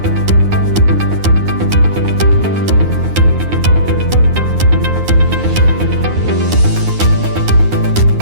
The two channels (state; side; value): late; left; 9.6 ms